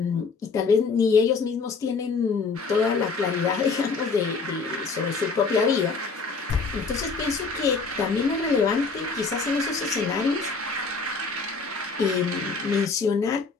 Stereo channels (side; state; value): right; quieter; 4.5 dB